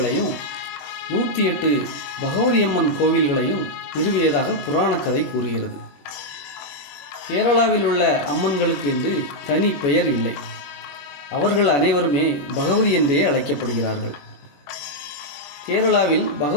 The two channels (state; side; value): late; right; 21 ms